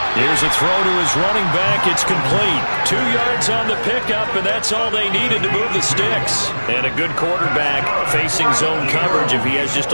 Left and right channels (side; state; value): both; inverted; correlation -1.00